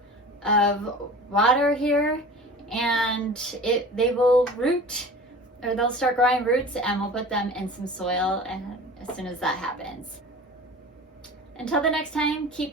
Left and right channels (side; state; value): both; normal; correlation 0.39